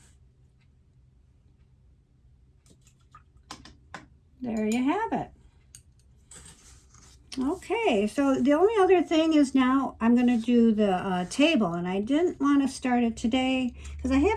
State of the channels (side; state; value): both; identical; correlation 1.00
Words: There you have it. Okay, so the only other thing is now I'm going to do the table, and I didn't want to start it today because I